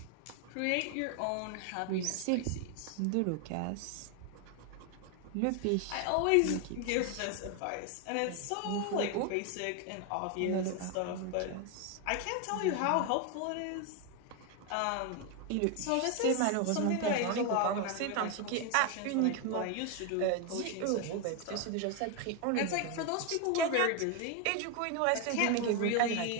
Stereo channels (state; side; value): different; both; correlation 0.01